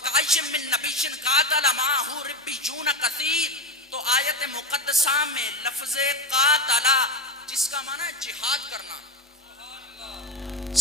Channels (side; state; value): both; normal; correlation 0.18